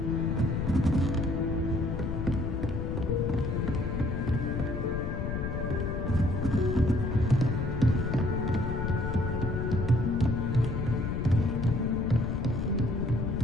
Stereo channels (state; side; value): noise; left; rumble, 2 dB below the sound